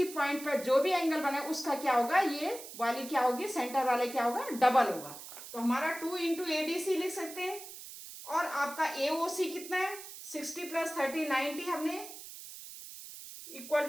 पॉइंट पर जो भी एंगल बने उसका क्या होगा, ये वाली क्या होगी, सेंटर वाले क्या होगा, डबल होगा। तो हमारा 2 इंटू ए डी सी लिख सकते हैं। और आपका ए ओ सी कितना है, 60 प्लस 30 90, हमने equal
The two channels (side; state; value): right; noise; hiss, 13 dB below the sound